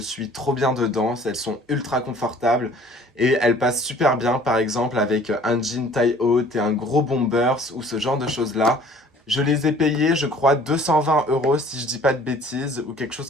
trop bien dedans, elles sont ultra confortables. Et elles passent super bien par exemple avec un jean taille haute et un gros bombers ou ce genre de choses là. Je les ai payés, je crois, 220 € si je dis pas de bêtises, ou quelque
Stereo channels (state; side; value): normal; both; correlation 0.52